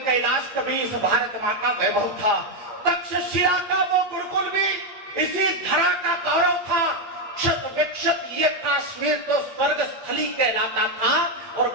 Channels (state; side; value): late; left; 8.4 ms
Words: कैलाश कभी इस भारत माँ का वैभव था, तक्षशिला का वो गुरुकुल भी इसी धरा का गौरव था, क्षत विक्षत ये काश्मीर तो स्वर्ग स्थली कहलाता था और